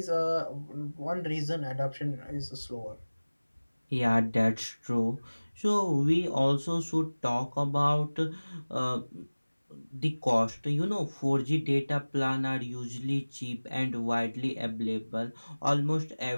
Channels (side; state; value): both; inverted; correlation -1.00